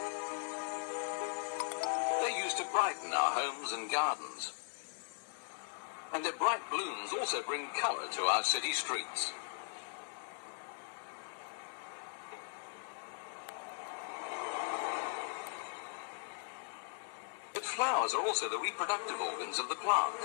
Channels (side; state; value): right; silent; digital silence